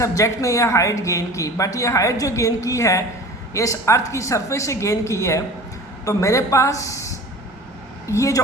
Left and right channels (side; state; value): both; normal; correlation 0.40